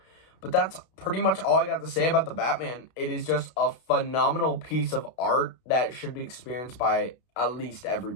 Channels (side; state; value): right; late; 32 ms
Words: But that's pretty much all I got to say about the Batman. It is just a phenomenal piece of art that should be experienced by at least